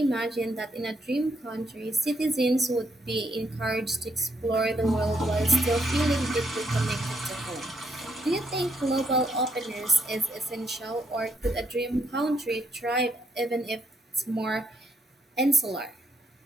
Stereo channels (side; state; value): both; normal; correlation 0.74